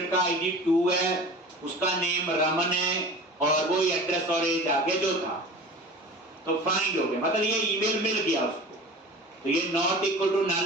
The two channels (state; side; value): normal; both; correlation 0.38